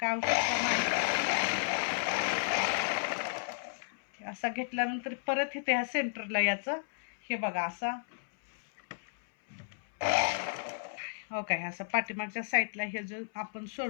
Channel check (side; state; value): right; silent; 56 dB below the other